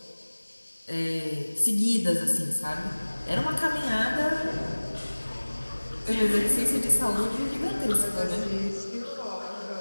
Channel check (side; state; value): both; inverted; correlation -1.00